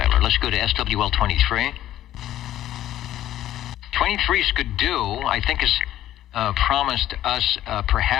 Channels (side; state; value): right; quieter; 12.9 dB